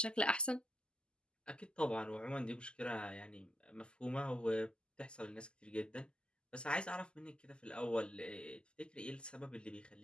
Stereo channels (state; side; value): late; right; 0.049 ms